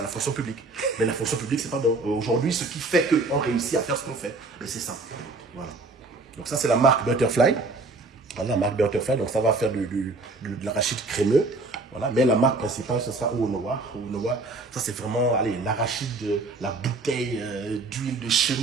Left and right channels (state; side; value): quieter; left; 3.3 dB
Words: la fonction publique. Mais la fonction publique, c'est pas bon. Aujourd'hui, ce qui fait qu'on réussit à faire ce qu'on fait, c'est ça. Voilà. Donc ça, c'est la marque Butterfly. Voilà, la marque Butterfly. Donc ça va faire de l'arachide crémeux. Voilà. Mais la marque principale, ce sera Oonowa. Oonowa, ça c'est vraiment l'arachide, la bouteille d'huile de chez